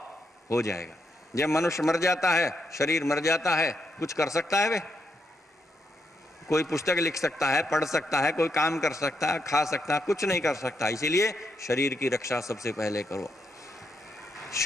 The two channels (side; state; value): both; normal; correlation 0.81